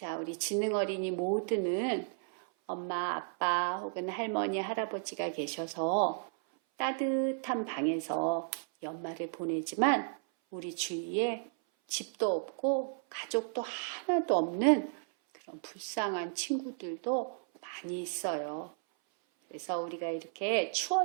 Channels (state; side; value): silent; left; 55 dB below the other